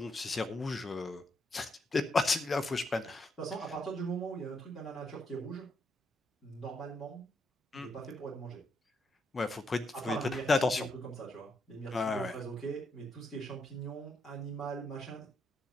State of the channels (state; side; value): normal; both; correlation 0.78